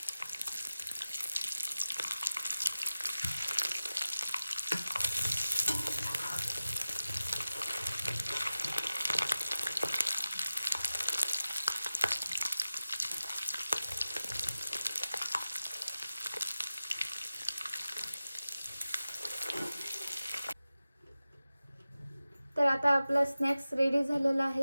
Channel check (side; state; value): both; inverted; correlation -0.95